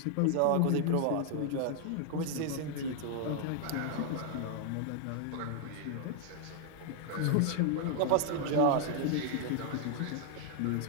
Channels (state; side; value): different; both; correlation 0.00